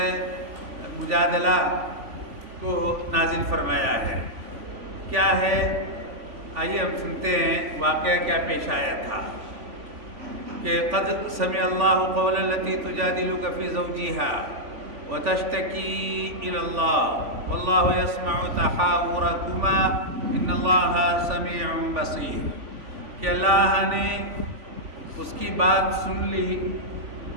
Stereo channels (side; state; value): left; late; 3.5 ms